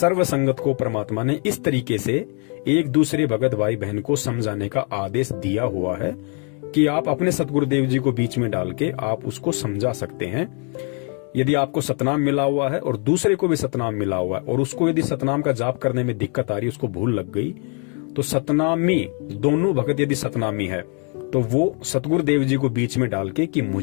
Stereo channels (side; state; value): right; quieter; 39.1 dB